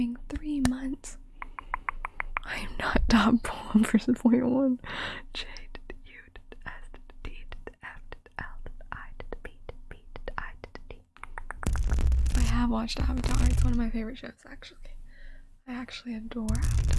3 months. I am not top 1 versus 0.1. J did U did S did D did F did L did I did B did B did I did D. I have watched Avatar. It's one of my favorite shows, actually. I actually adore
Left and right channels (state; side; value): identical; both; correlation 1.00